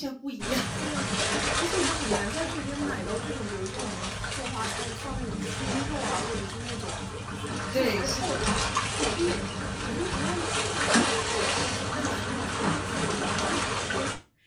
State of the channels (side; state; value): both; identical; correlation 1.00